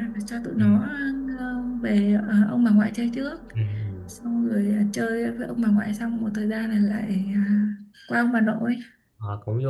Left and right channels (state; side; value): identical; both; correlation 1.00